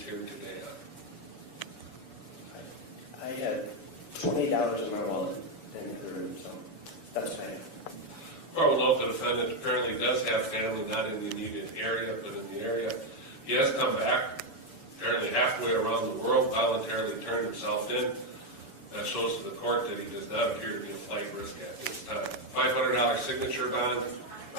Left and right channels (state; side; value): late; right; 7.0 ms